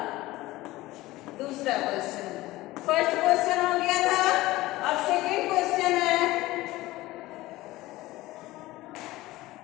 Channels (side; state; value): right; quieter; 18.2 dB